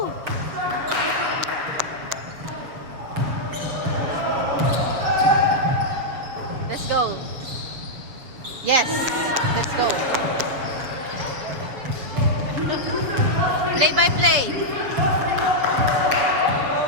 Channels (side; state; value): left; late; 7.3 ms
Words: Yes. Let's go. Play by play.